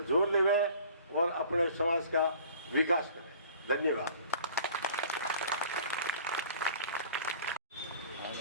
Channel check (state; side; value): inverted; both; correlation -0.48